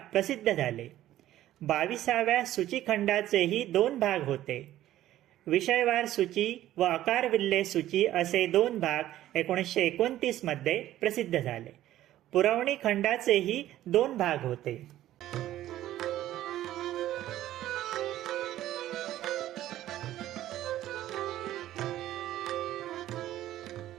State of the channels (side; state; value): left; quieter; 13.6 dB